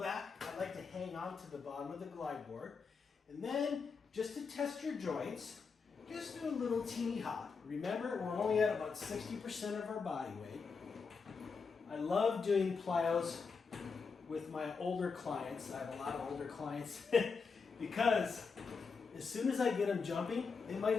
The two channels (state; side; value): quieter; right; 5.1 dB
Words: I like to hang on to the bottom of the glide board. And then just to test your joints, just do a little teeny hop. Remember, we're only at about 60% of our body weight. I love doing plyos with my older clients. I have a lot of older clients because as soon as I get them jumping, they